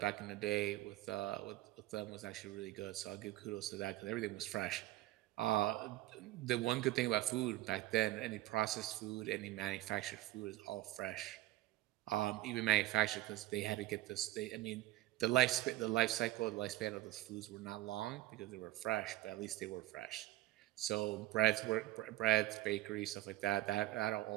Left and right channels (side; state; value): left; quieter; 16.1 dB